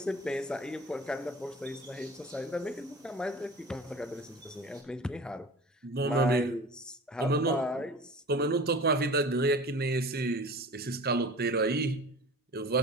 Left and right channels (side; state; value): both; normal; correlation 0.39